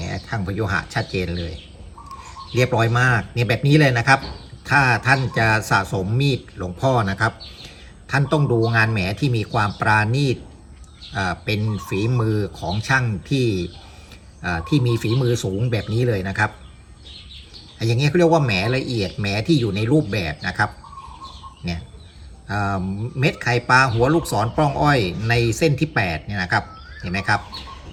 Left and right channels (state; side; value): identical; both; correlation 1.00